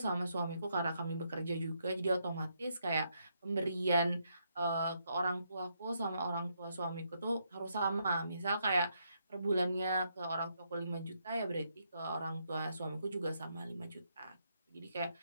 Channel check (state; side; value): inverted; both; correlation -0.77